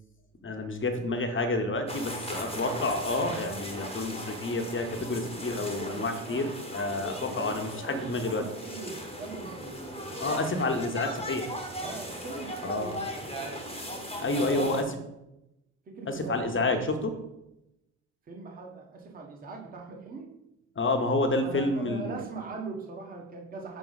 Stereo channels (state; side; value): normal; both; correlation 0.13